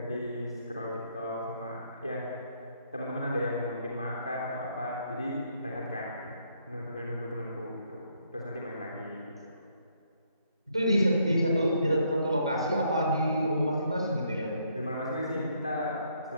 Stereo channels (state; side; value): inverted; both; correlation -0.71